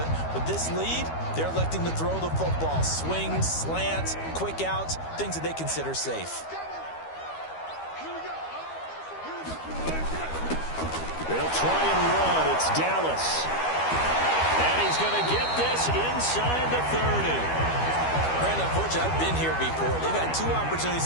with this lead, they're electing to throw the football. Swings, slants, quick outs, things that they consider safe. They'll try and run. It's Dallas. And he's going to get this inside the 30. Brandon, unfortunately, I've been here before. They've had 2 opportunities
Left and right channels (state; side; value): late; right; 12 ms